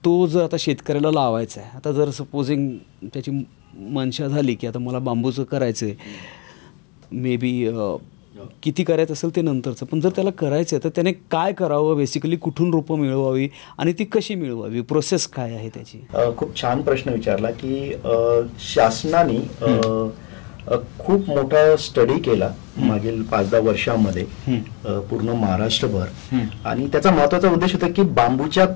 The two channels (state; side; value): quieter; right; 31.6 dB